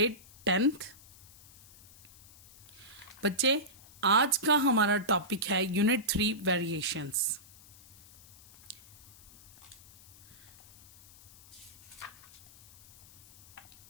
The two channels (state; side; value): noise; left; hiss, 22 dB below the sound